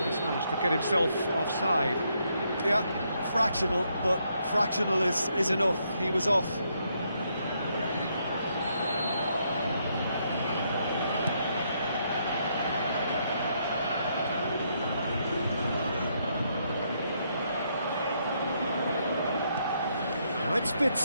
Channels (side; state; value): both; inverted; correlation -0.75